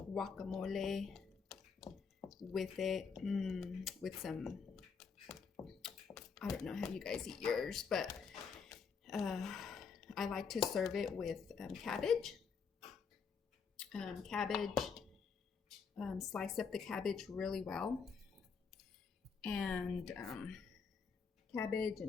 with it, with some, I don't know how you guys eat yours, but I like to serve it with cabbage. Slice up the cabbage really well, and cabbage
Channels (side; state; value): right; quieter; 5.7 dB